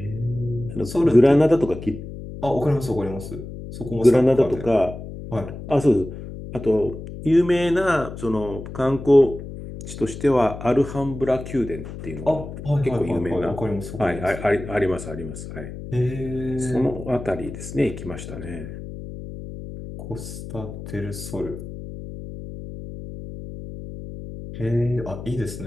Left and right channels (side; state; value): left; noise; hum, 11 dB below the sound